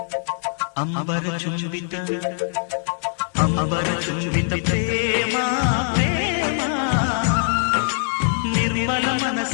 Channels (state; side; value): silent; right; 64 dB below the other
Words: ಅಂಬರ ಚುಂಬಿತ ಅಂಬರ ಚುಂಬಿತ ಪ್ರೇಮ ಪ್ರೇಮ ನಿರ್ಮಲ